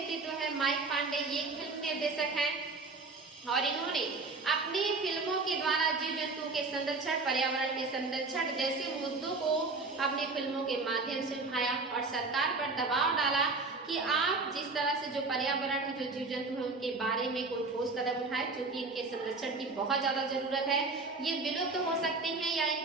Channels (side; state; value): left; quieter; 3.7 dB